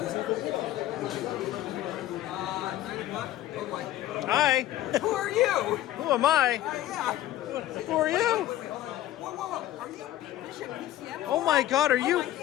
Hi. Who are you? Who am I? Yeah. Who are you? Whoa. Are you BBISHOPPCM? Oh my God! Are you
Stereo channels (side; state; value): right; quieter; 13.7 dB